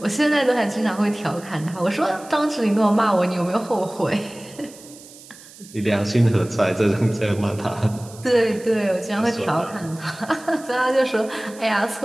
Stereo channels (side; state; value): right; noise; hiss, 20 dB below the sound